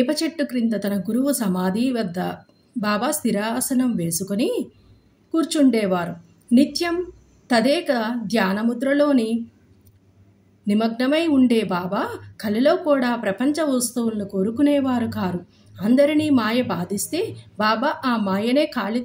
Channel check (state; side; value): identical; both; correlation 1.00